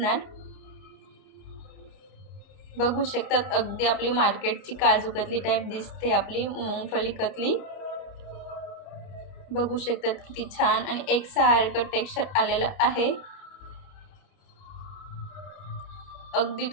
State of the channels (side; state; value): right; late; 30 ms